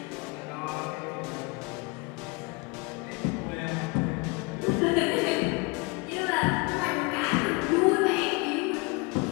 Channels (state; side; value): quieter; right; 28.1 dB